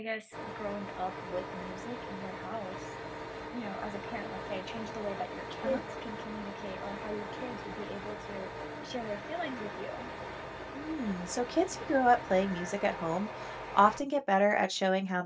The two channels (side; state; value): both; identical; correlation 1.00